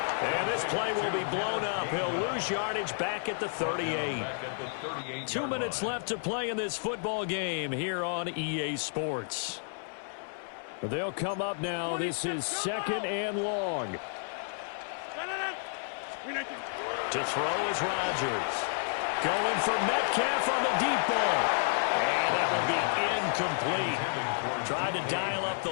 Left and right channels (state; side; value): silent; right; 57 dB below the other